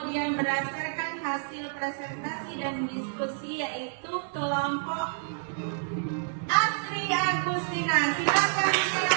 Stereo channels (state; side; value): silent; left; 59 dB below the other